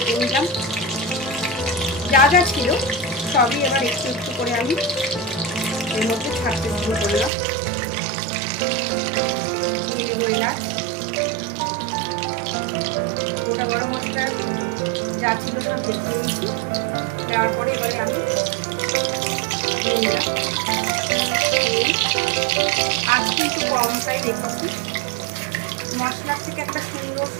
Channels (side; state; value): left; drops out; at 7.3 s